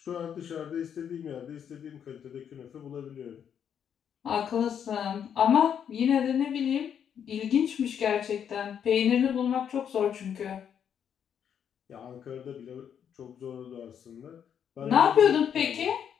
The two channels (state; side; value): quieter; right; 8.4 dB